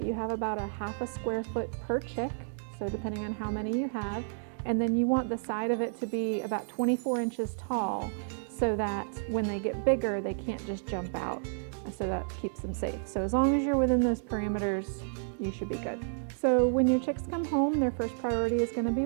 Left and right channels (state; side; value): silent; left; digital silence